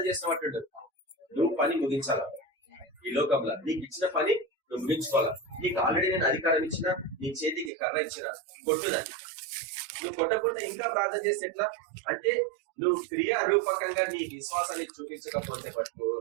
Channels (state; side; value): drops out; left; at 7.7 s